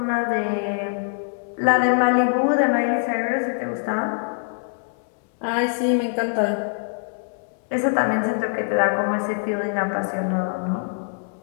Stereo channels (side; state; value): right; silent; 60 dB below the other